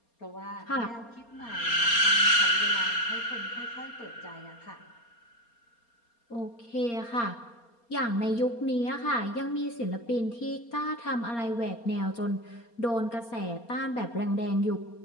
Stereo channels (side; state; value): right; late; 4.3 ms